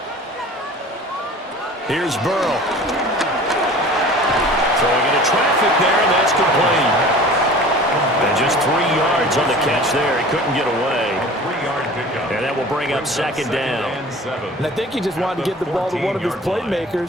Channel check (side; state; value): both; normal; correlation 0.43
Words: Here's Burrow. Throwing into traffic there, and that's complete. And just 3 yards on the catch there. He couldn't get away. And that will bring up 2nd down. And I think he just wanted to get the ball to one of his